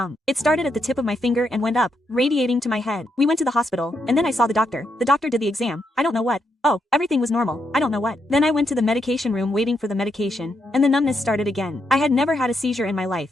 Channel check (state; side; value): normal; both; correlation 0.80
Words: It started at the tip of my finger and went up, radiating to my head. We went to the hospital, and then I saw the doctor. The doctor did the exam. I don't know what. Oh, everything was normal. I don't know what. Then I went to the medication room waiting for the medication, and the numbness started again. I had never had a seizure in my life,